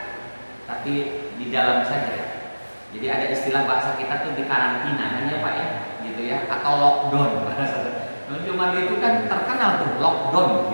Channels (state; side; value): inverted; both; correlation -1.00